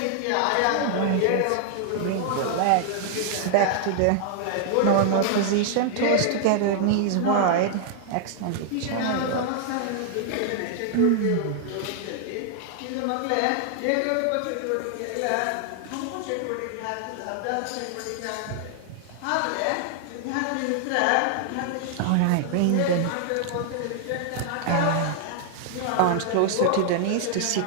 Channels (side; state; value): both; different; correlation 0.00